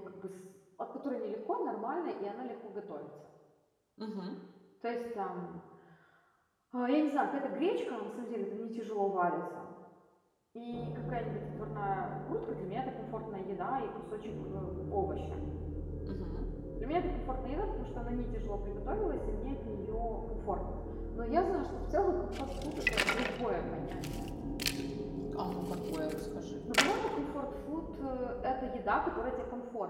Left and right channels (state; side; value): identical; both; correlation 1.00